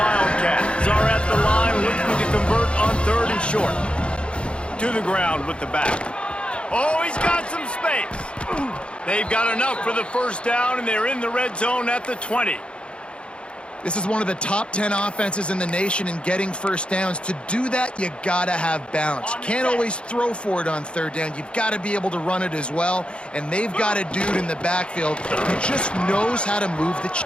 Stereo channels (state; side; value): late; right; 0.057 ms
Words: are at the line looking to convert on 3rd and short. To the ground with the back. Oh, he's got some space. They've got enough for the first down, and they're in the red zone at the 20. This is one of the top 10 offenses in the nation in getting first downs. To do that, you gotta have balance. You can't always throw for it on 3rd down. You've got to be able to run it as well. And they've got a dude in the backfield who just knows how to move the